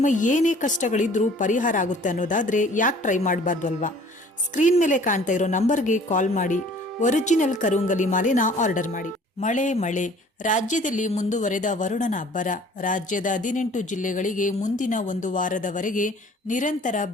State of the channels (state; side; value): normal; both; correlation 0.51